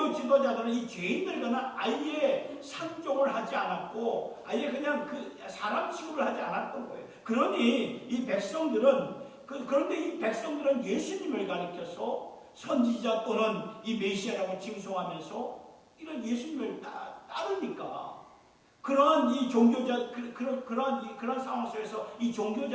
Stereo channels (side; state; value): both; identical; correlation 1.00